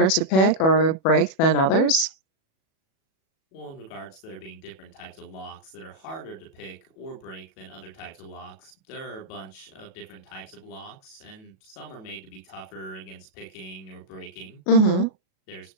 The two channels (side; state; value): right; late; 37 ms